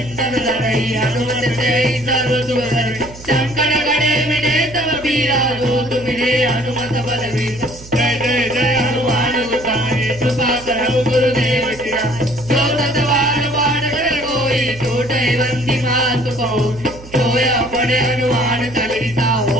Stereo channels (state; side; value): noise; right; hum, 17 dB below the sound